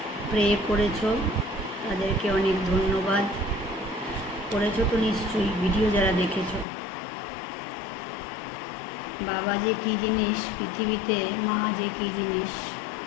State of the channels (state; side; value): drops out; right; at 6.7 s